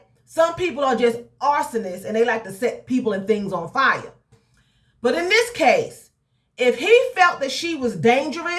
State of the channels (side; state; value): both; identical; correlation 1.00